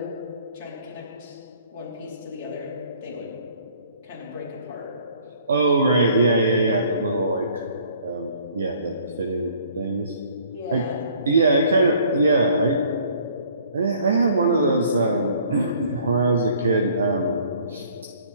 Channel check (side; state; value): both; inverted; correlation -0.57